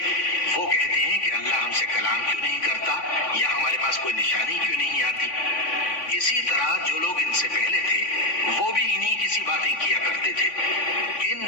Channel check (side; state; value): right; late; 3.5 ms